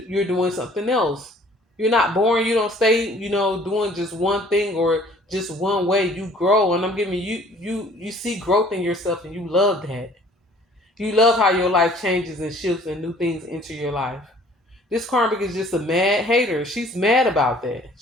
doing something else. You're not boring. You don't stay, doing just one thing or just one way. You grow, and I'm giving you see growth in yourself, and you love that. You love how your life changes and shifts and new things enter your life. This karmic is just a mad hater. She's mad about that.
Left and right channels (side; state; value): both; normal; correlation 0.54